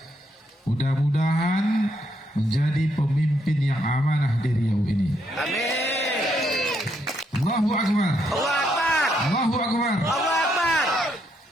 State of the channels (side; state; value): both; normal; correlation 0.76